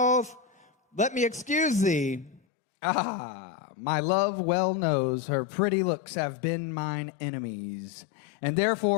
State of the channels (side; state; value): right; drops out; at 2.4 s